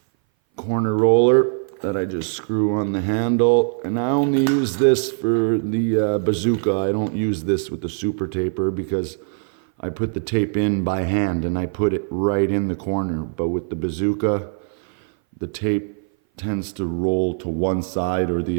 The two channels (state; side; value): silent; left; 59 dB below the other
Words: corner roller that I just screw on the handle. And I only use this for the bazooka. I don't use this with the super taper because I put the tape in by hand and I put it right in the corner. But with the bazooka, the tape tends to roll to one side or